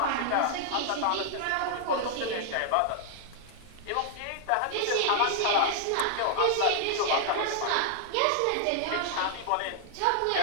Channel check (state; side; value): different; both; correlation -0.01